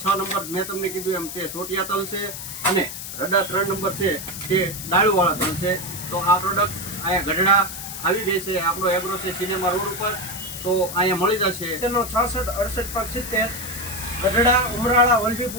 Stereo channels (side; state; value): left; noise; hiss, 8 dB below the sound